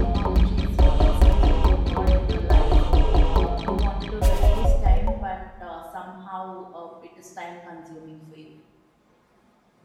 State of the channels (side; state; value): both; identical; correlation 1.00